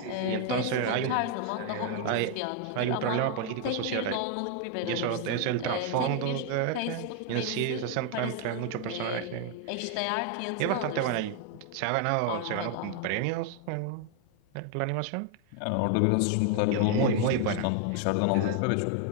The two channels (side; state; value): both; different; correlation 0.00